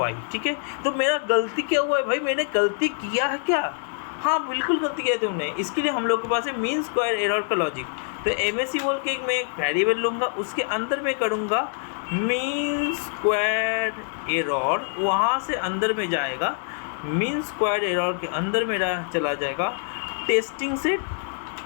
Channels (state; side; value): silent; right; 62 dB below the other